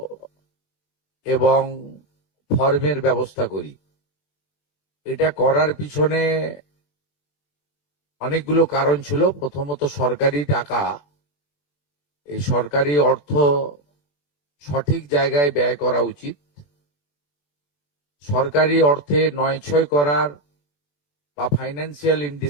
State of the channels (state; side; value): late; right; 21 ms